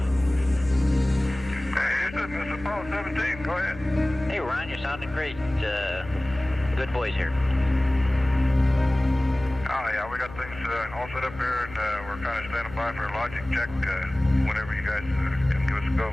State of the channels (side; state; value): left; noise; hum, 15 dB below the sound